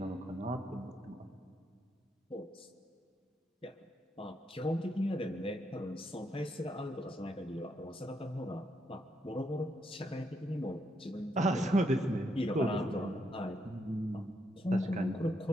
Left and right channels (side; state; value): both; normal; correlation 0.78